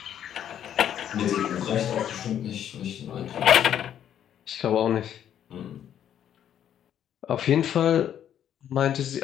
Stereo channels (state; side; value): quieter; right; 10.0 dB